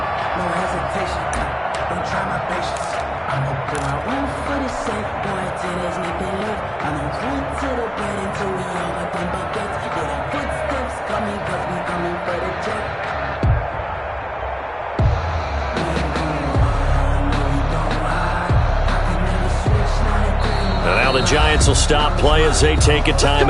Now the Giants will stop play as they take a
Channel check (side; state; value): both; identical; correlation 1.00